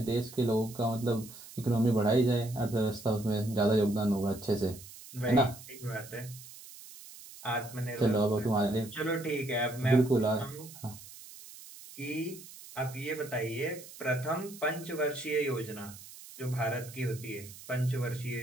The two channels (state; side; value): noise; right; hiss, 17 dB below the sound